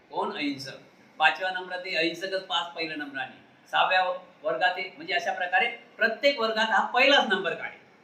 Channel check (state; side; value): identical; both; correlation 1.00